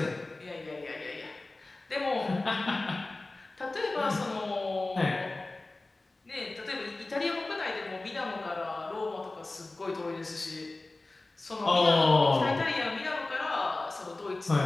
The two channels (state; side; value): quieter; right; 3.1 dB